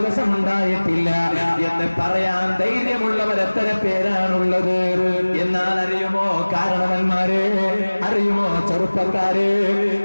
ഉണ്ടായിട്ടില്ല എന്ന് പറയാൻ ധൈര്യമുള്ളവർ എത്ര പേരാണുള്ളത്? എന്നാൽ അറിയുമോ കാരണവന്മാരെ, അറിയുമോ ചെറുപ്പക്കാരെ,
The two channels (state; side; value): inverted; both; correlation -1.00